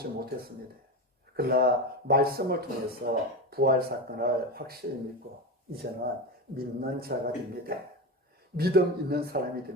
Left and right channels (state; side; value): normal; both; correlation 0.20